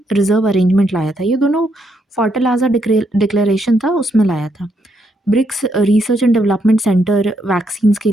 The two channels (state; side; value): normal; both; correlation 0.76